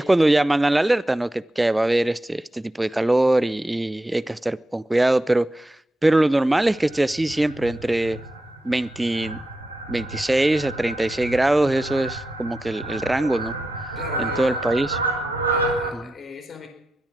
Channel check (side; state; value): both; normal; correlation 0.89